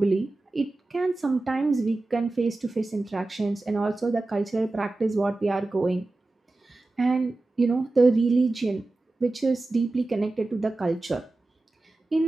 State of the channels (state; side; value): quieter; left; 3.0 dB